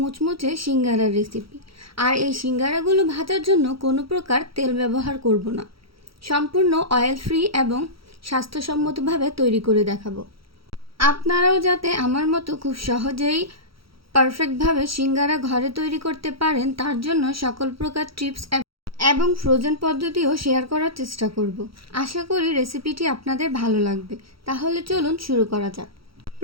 সিঙ্গারার রেসিপি। আর এই সিঙ্গারাগুলো ভাজার জন্য কোনো প্রকার তেল ব্যবহার করব না, সম্পূর্ণ অয়েল ফ্রি এবং স্বাস্থ্যসম্মতভাবে তৈরি করে দেখাবো। আপনারাও যাতে আমার মতো খুব সহজেই পারফেক্টভাবে সিঙ্গারা ঘরে তৈরি করতে পারেন, তার জন্য সকল প্রকার টিপস এবং ফ্রোজেন পদ্ধতিও শেয়ার করার চেষ্টা করব। আশা করি রেসিপিটি আপনাদের ভালো লাগবে। তাহলে চলুন শুরু করা যাক।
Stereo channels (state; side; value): late; left; 0.75 ms